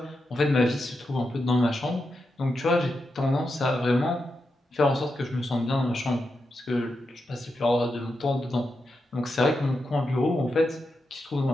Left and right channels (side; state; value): both; normal; correlation 0.87